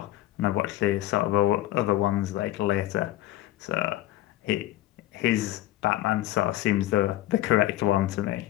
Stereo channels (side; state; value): right; quieter; 15.2 dB